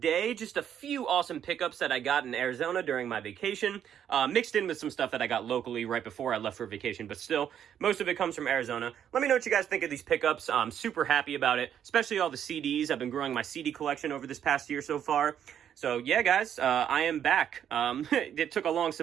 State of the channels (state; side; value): quieter; left; 9.4 dB